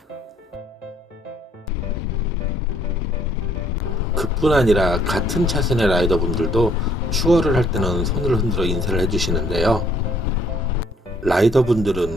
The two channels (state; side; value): normal; both; correlation 0.64